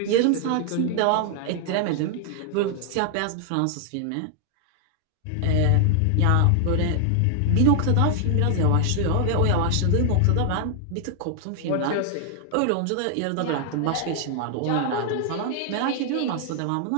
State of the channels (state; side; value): different; both; correlation 0.00